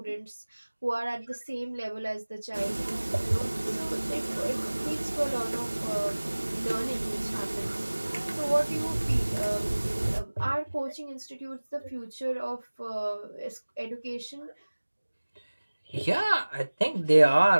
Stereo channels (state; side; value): inverted; both; correlation -1.00